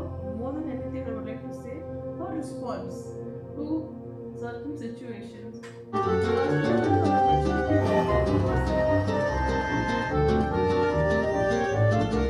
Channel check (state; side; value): identical; both; correlation 1.00